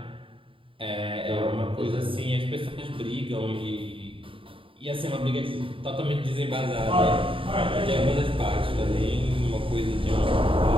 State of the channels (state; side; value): late; left; 0.25 ms